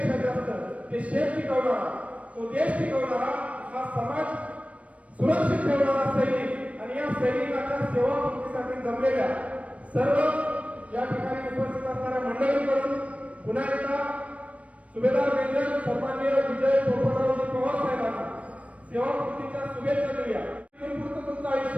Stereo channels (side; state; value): left; late; 0.065 ms